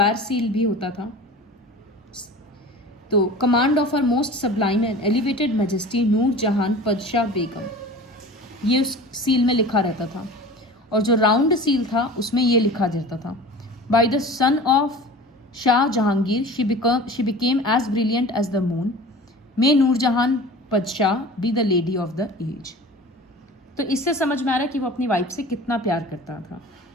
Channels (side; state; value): both; normal; correlation 0.39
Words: सील भी होता था। तो command of her most sublime and elevated majesty Nur Jahan Padshah बेगम, ये उस सील में लिखा रहता था। और जो राउंड सील था उसमें ये लिखा रहता था, by the son of Shah Jahangir she became as brilliant as the moon, may Nur Jahan Padshah be the lady of the age. तो इससे समझ में आ रहा है कि वो अपनी वाइफ से कितना प्यार करता था।